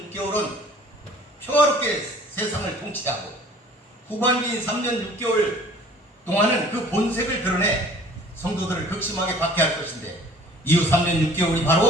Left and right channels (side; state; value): both; normal; correlation 0.50